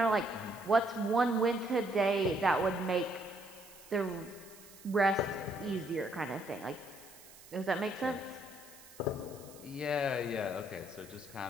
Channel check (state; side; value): noise; right; hiss, 20 dB below the sound